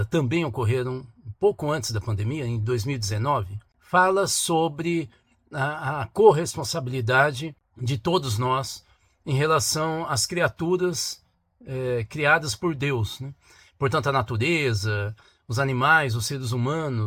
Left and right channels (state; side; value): identical; both; correlation 1.00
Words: também ocorreram um pouco antes da pandemia, em 2019, fala sobre a corresponsabilidade de todos nós em relação às criaturas criadas por Deus, né? Portanto, a natureza, os animais, os seres